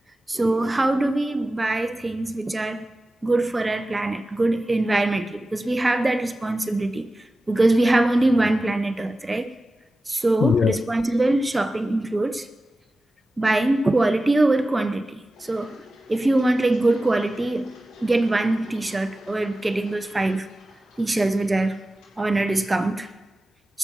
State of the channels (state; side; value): normal; both; correlation 0.95